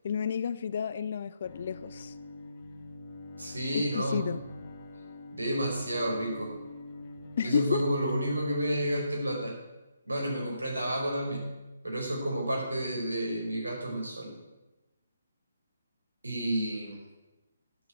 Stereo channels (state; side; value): inverted; both; correlation -0.78